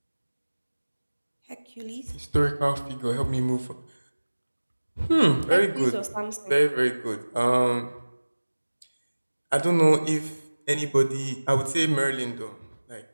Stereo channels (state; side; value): inverted; both; correlation -1.00